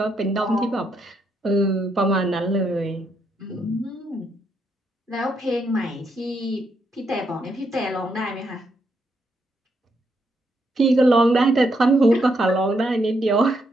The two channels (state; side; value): normal; both; correlation 0.78